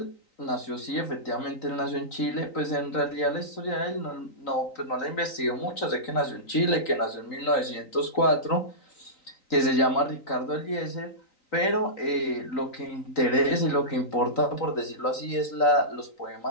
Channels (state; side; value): late; right; 3.9 ms